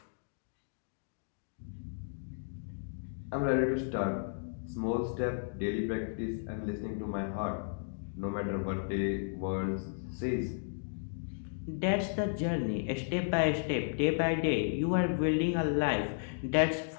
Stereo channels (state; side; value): silent; right; digital silence